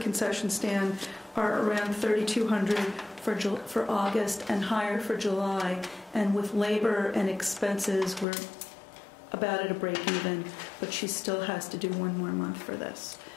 stand are around $3,200 for August and higher for July. And with labor and expenses, we're about at a break even, but she still has to do 1 more month for this.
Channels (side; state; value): right; drops out; at 8.2 s